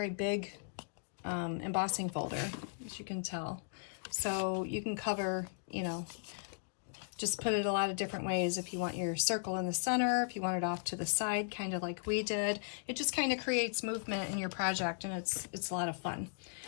big embossing folder, as you can tell. So you can cover, you know, just put it a lot of different ways. If you want your circle in the center, if you want it off to the side, kind of like we did. It just kind of creates movement in your project, and it's a lot of fun.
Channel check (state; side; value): silent; right; digital silence